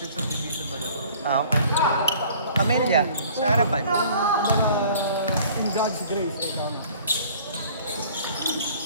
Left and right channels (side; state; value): both; inverted; correlation -0.51